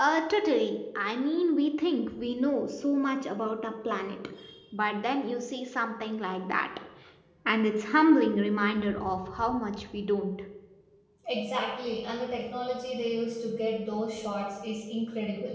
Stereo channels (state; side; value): identical; both; correlation 1.00